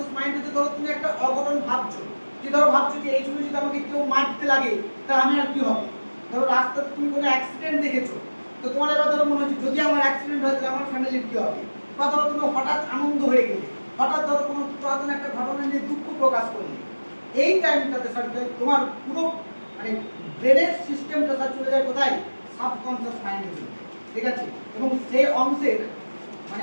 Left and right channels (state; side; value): inverted; both; correlation -1.00